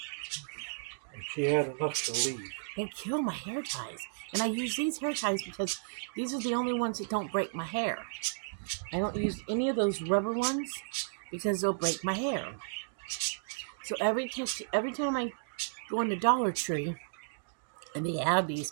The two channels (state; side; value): silent; left; digital silence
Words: And she had enough to leave. They kill my hair ties. And I use these hair ties because these are the only ones that don't break my hair. I don't use any of those rubber ones because they'll break my hair. So every time I go in the Dollar Tree, And they have